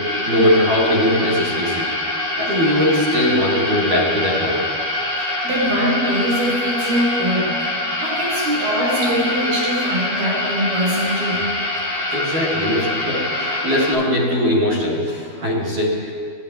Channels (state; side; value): late; left; 12 ms